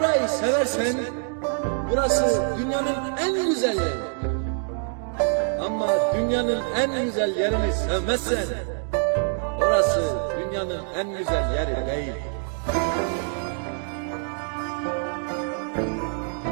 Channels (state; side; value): silent; left; 58 dB below the other